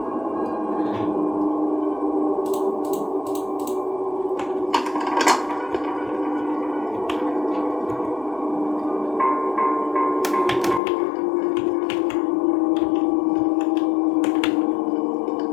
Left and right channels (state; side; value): drops out; right; at 10.8 s